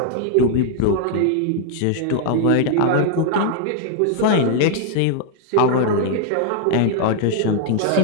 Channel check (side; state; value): both; different; correlation 0.00